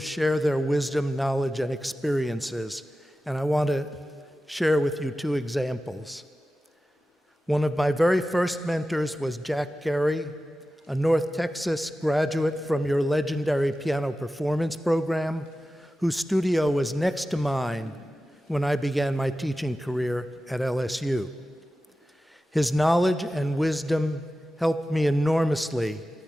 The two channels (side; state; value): both; normal; correlation 0.94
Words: their wisdom, knowledge, and experiences. And I want to share with you two examples. One of my very first mentors was Jack Gary, a North Texas graduate from your legendary piano performance program, whose studio was next to mine when I began my teaching career at LSU. His knowledge and wisdom helped me enormously